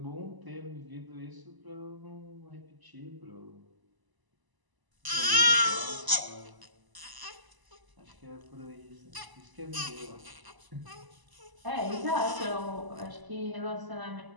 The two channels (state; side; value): late; left; 1.0 ms